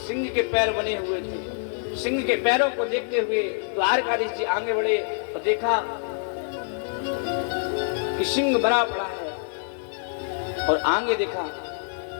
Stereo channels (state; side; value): silent; right; 56 dB below the other